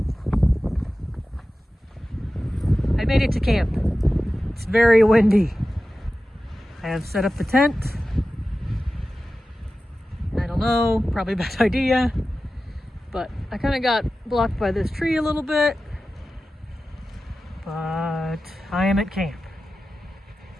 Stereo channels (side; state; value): both; normal; correlation 0.94